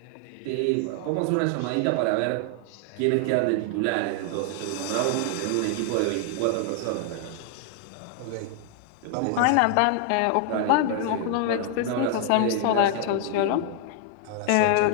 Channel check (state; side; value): different; both; correlation 0.00